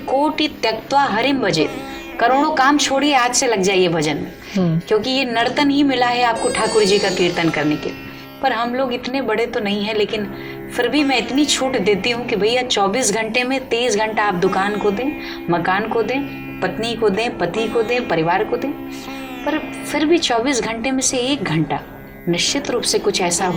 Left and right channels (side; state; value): both; identical; correlation 1.00